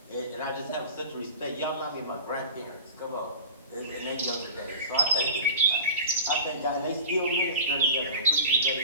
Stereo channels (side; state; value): both; inverted; correlation -0.36